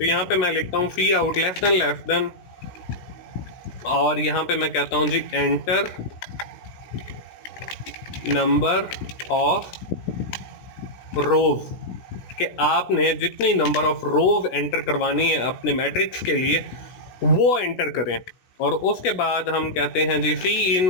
यहाँ पे मैं लिखता हूँ सी आउट लेस देन, और यहाँ पे मैं कहता हूँ जी एंटर नंबर ऑफ रोज, कि आपने जितनी नंबर ऑफ रोज एंटर करवानी है अपने मैट्रिक्स के लिए वो एंटर करें। और उसके बाद हम कहते हैं जी सी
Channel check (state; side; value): late; right; 16 ms